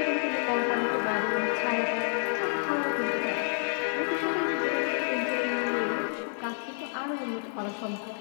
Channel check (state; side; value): silent; right; digital silence